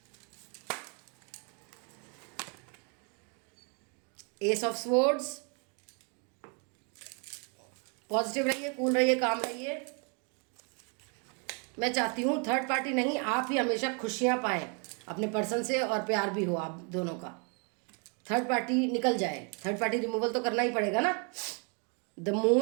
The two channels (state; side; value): quieter; left; 36.3 dB